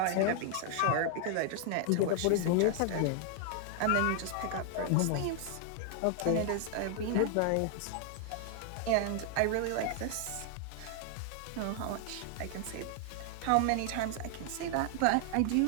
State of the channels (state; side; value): different; both; correlation 0.00